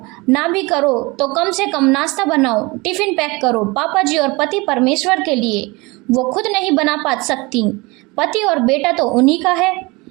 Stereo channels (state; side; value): quieter; left; 24.9 dB